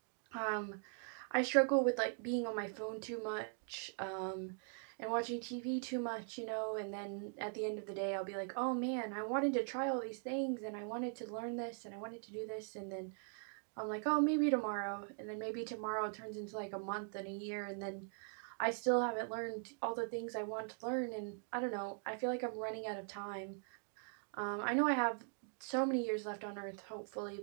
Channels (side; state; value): left; silent; 50 dB below the other